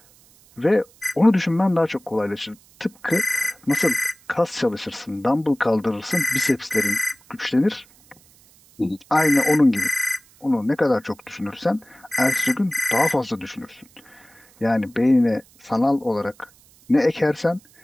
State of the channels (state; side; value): noise; right; hiss, 28 dB below the sound